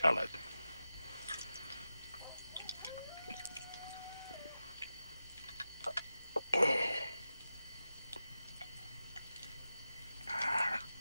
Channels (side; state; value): both; inverted; correlation -0.91